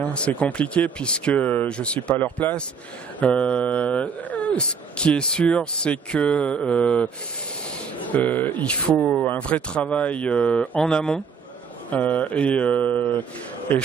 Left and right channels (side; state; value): left; quieter; 5.9 dB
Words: c'est compliqué puisque je suis pas à leur place. Ce qui est sûr, c'est que il faut un vrai travail en amont et